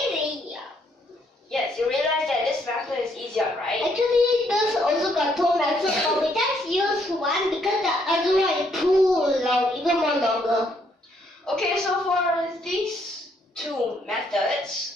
Yes, you realize that this method is easier, right? Actually, there's also got two methods, but we just use one because the other one is too long, even more longer. Okay, so for these two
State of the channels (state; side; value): normal; both; correlation 0.71